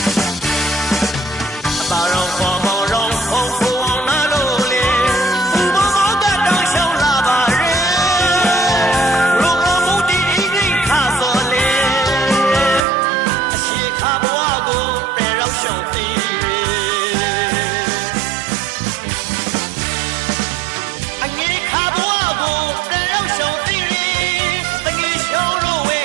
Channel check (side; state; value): left; drops out; at 12.8 s